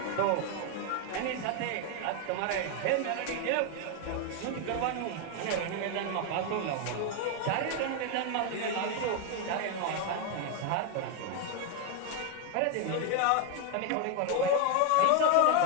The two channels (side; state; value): both; different; correlation 0.01